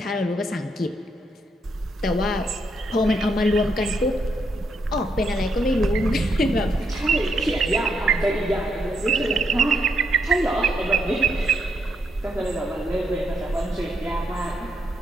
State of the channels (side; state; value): both; normal; correlation 0.78